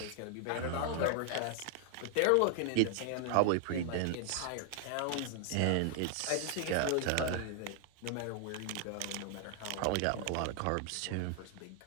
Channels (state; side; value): different; both; correlation 0.00